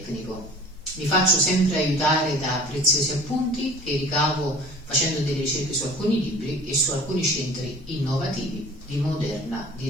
Mi faccio sempre aiutare da preziosi appunti che ricavo facendo delle ricerche su alcuni libri e su alcuni centri innovativi di moderna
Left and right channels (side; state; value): both; normal; correlation 0.45